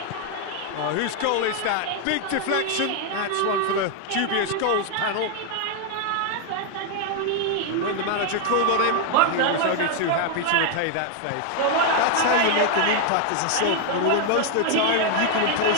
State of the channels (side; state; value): both; different; correlation 0.00